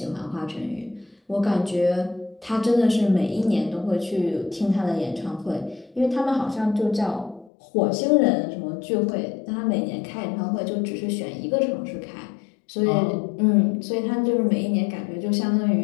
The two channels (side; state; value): right; drops out; at 7.5 s